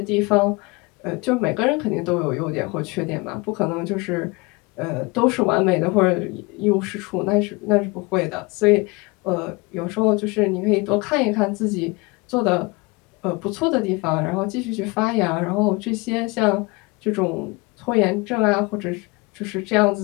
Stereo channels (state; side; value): quieter; right; 26.2 dB